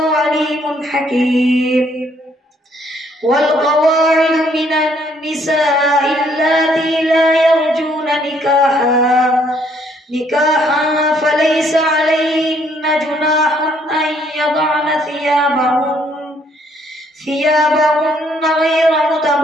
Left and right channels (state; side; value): normal; both; correlation 0.66